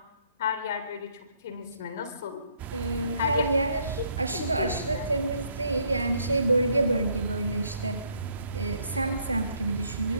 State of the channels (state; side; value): inverted; both; correlation -0.67